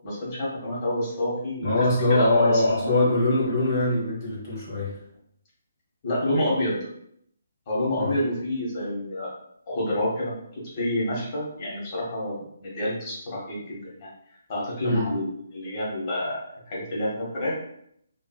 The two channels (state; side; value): inverted; both; correlation -0.71